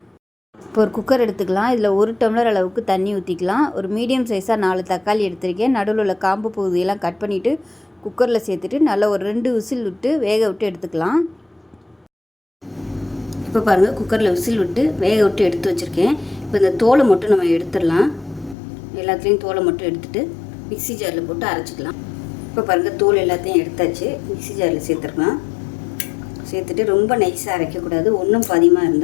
இப்போ ஒரு குக்கர் எடுத்துக்கலாம். இதில் 1 டம்ளர் அளவுக்கு தண்ணி ஊற்றிக்கலாம். ஒரு மீடியம் சைஸாக 4 தக்காளி எடுத்திருக்கேன். நடுவில் உள்ள காம்பு பகுதியெல்லாம் கட் பண்ணிவிட்டு குக்கரில் சேர்த்துட்டு நல்லா ஒரு 2 விசில் விட்டு வேக விட்டு எடுத்துக்கலாம். இப்போ பாருங்கள், குக்கரில் விசில் விட்டு வேக விட்டு எடுத்து வச்சுருக்கேன். இப்போ இந்த தோலை மட்டும் நம்ம எடுத்துடலாம். எல்லாத்துலேயும் தோலை மட்டும் எடுத்துகிட்டு மிக்ஸி ஜாரில் போட்டு அரைச்சிக்கலாம். இப்போ பாருங்கள், தோல் எல்லாத்தையும் எடுத்தாச்சு. மிக்ஸி ஜாரில் சேர்த்துருக்கலாம். சேர்த்துட்டு ரொம்ப நைஸாக அரைக்கக்கூடாது. ஒன்றும் பாதியமாக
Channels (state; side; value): drops out; right; at 18.6 s